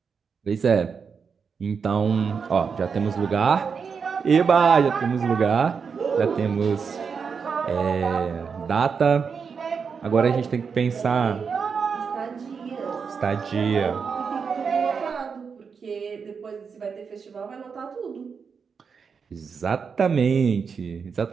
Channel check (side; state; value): left; quieter; 5.9 dB